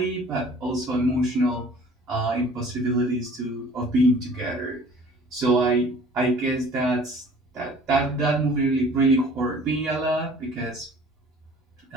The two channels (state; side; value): normal; both; correlation 0.50